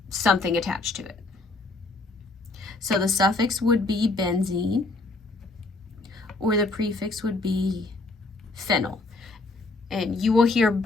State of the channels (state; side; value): quieter; right; 3.3 dB